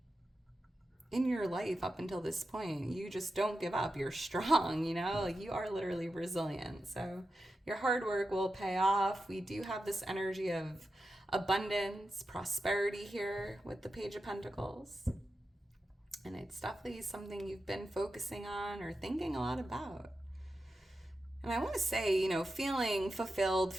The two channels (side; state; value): both; normal; correlation 0.90